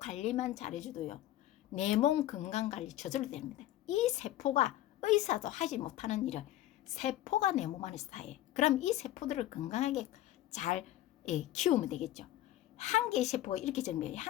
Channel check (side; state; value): right; quieter; 14.0 dB